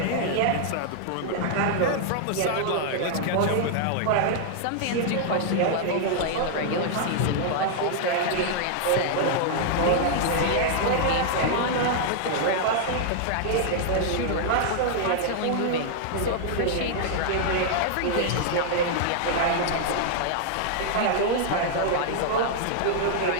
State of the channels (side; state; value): both; different; correlation -0.01